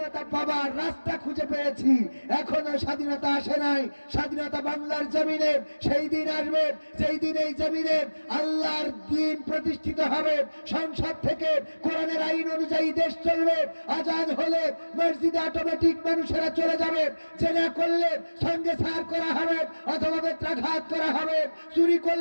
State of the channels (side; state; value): both; inverted; correlation -1.00